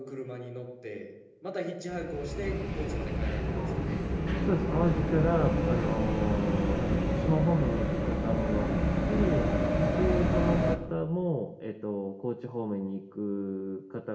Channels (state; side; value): identical; both; correlation 1.00